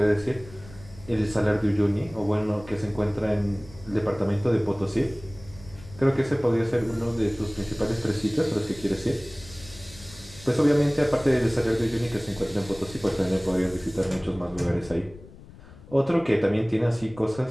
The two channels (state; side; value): noise; left; rumble, 19 dB below the sound